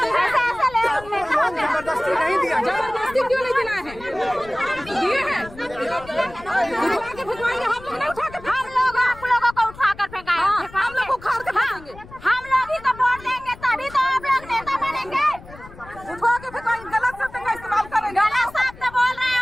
जबरदस्ती नहीं दिया। जबरदस्ती क्यों नहीं दिलाए हैं? दिए हैं, उठवा के फेंकवाएंगे। हम लोग नहीं उठा के, हम लोग आप लोगों को उठा कर फेंकाएंगे। हम लोग उखाड़ के फेंकेंगे। हम लोग ही तो वोट देंगे, तभी तो आप लोग नेता बनेंगे। उठवा के फेंकवाएंगे, गलत शब्द का इस्तेमाल करेंगे। गलत शब्द बोल रहे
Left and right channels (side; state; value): left; noise; rumble, 19 dB below the sound